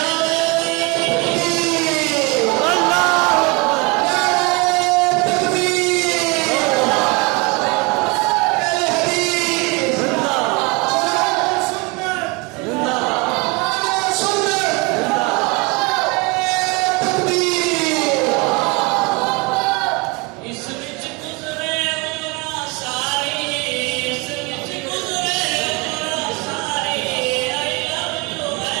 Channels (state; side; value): quieter; left; 27.1 dB